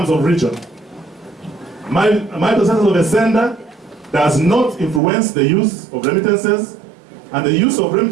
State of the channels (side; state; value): left; drops out; at 5.0 s